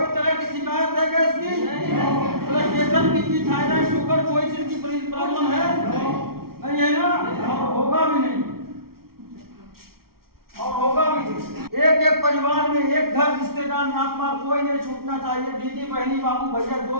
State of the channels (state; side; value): late; left; 0.94 ms